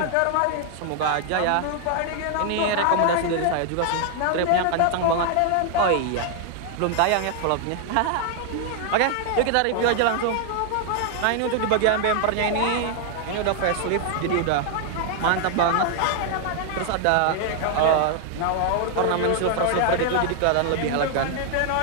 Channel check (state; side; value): different; both; correlation 0.00